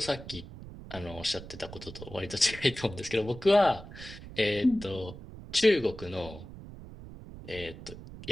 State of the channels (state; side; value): noise; right; rumble, 14 dB below the sound